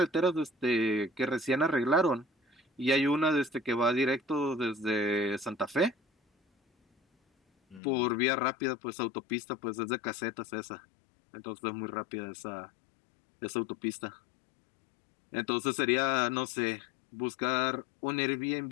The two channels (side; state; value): right; drops out; at 7.8 s